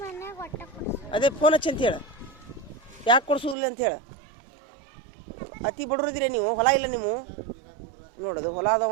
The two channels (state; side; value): drops out; left; at 3.6 s